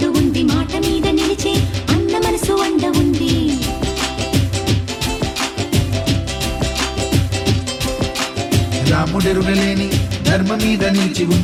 ఉంది మాట మీద నిలిచే అన్న మనసు అండ ఉంది రాముడెరుగలేని ధర్మ మీద నిలిచి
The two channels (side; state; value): both; identical; correlation 1.00